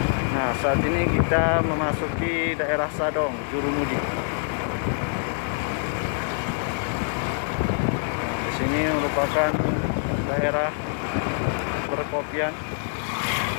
Nah, saat ini kita memasuki daerah Sadong, Jurumudi. Di sini merupakan daerah perkopian.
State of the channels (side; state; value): right; silent; digital silence